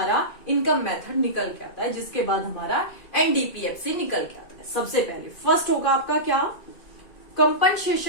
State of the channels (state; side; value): late; right; 2.5 ms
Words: इनकम मेथड निकल के आता है, जिसके बाद हमारा एनडीपीएफसी निकल के आता है। सबसे पहले फर्स्ट होगा आपका क्या?